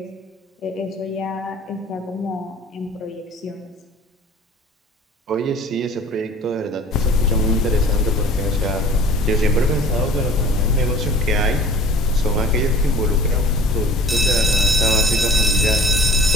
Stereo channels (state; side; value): normal; both; correlation 0.45